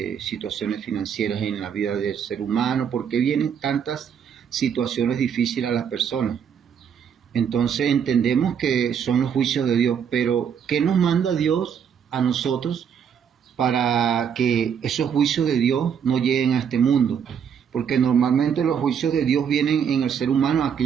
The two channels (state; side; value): quieter; left; 7.6 dB